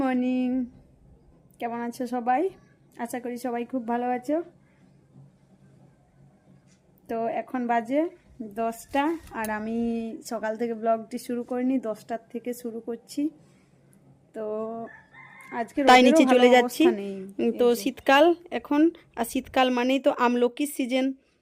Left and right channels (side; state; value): both; identical; correlation 1.00